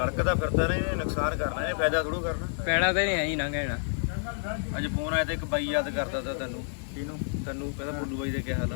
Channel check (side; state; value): right; silent; digital silence